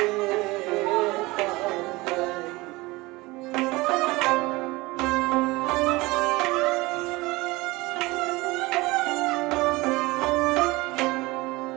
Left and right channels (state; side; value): quieter; left; 21.9 dB